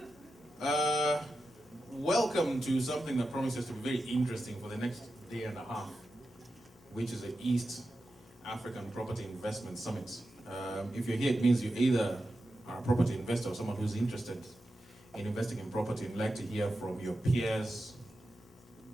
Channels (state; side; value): normal; both; correlation 0.91